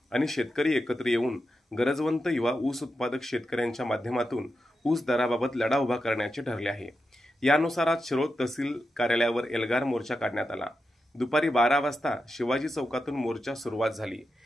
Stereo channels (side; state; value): both; normal; correlation 0.88